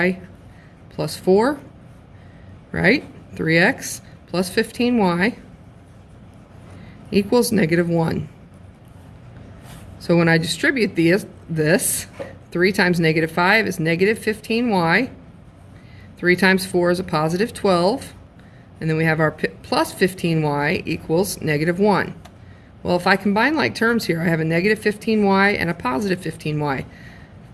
plus 4, right? 3x plus 15y equals negative 1. So when I distribute this, 3 times negative 5 is negative 15y. 3 times 4 is a positive 12. And then we have our plus 15y equals negative 1. Well, if I combine like terms here, I have a negative 15y and a positive 15y.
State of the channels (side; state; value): both; identical; correlation 1.00